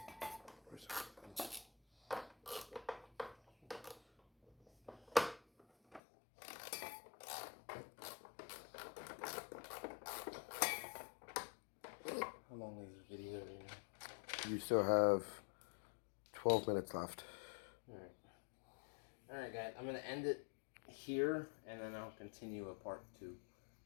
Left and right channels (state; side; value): drops out; right; at 6.0 s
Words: How long is the video right now? You still have 12 minutes left. Alright. Alright guys, I'm going to end it here and then I'll continue a part 2.